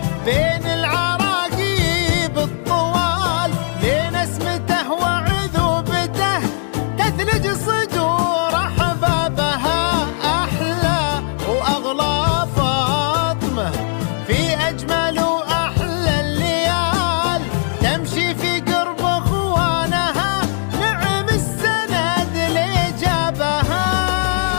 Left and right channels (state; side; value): silent; right; digital silence